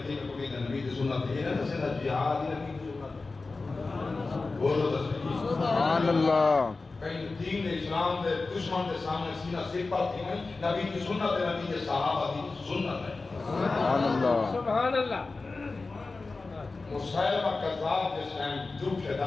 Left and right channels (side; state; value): right; quieter; 3.7 dB